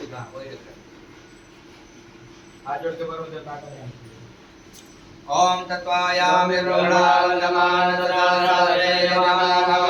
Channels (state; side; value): identical; both; correlation 1.00